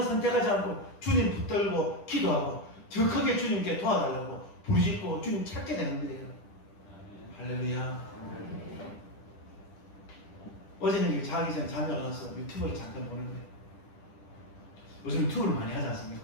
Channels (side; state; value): right; late; 10 ms